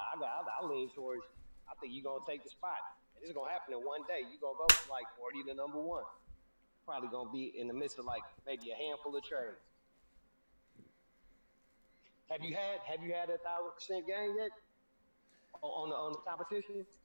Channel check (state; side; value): inverted; both; correlation -1.00